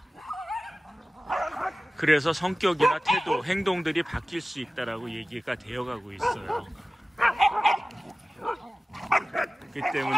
그래서 성격이나 태도, 행동들이 바뀔 수 있다라고 얘기가 되어가고 있어요. 그렇기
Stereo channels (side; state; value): both; normal; correlation 0.97